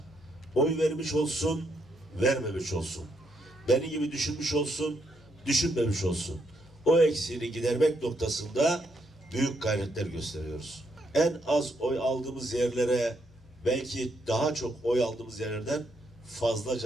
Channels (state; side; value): normal; both; correlation 0.76